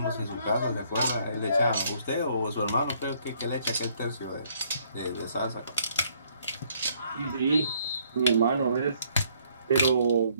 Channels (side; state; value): both; inverted; correlation -0.66